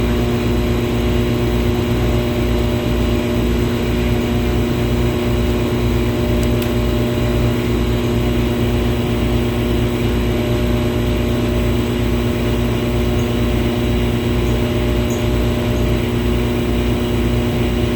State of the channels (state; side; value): identical; both; correlation 1.00